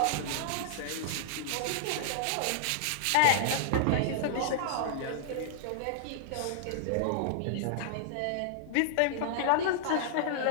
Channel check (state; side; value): different; both; correlation -0.01